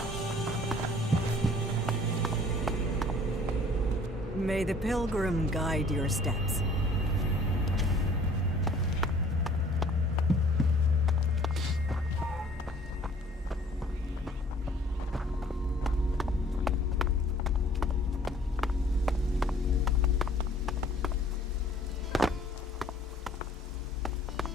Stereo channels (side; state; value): both; normal; correlation 0.54